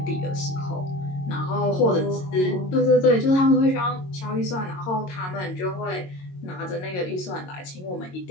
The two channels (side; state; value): right; late; 22 ms